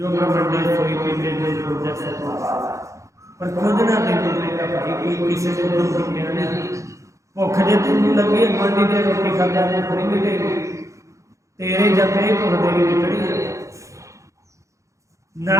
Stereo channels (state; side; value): late; left; 0.15 ms